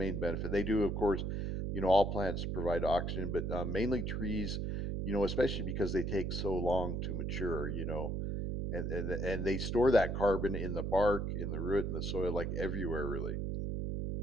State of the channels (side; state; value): right; noise; hum, 1 dB below the sound